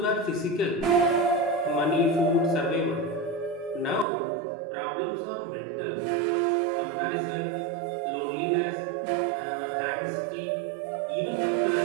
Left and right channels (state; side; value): drops out; left; at 4.0 s